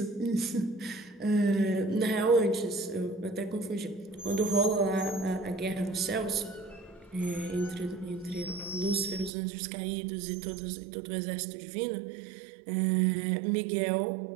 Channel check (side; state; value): left; drops out; at 9.3 s